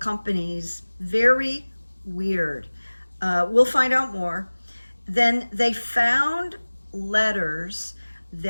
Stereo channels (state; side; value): inverted; both; correlation -1.00